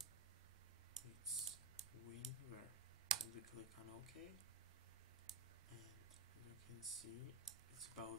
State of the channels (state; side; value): quieter; left; 3.8 dB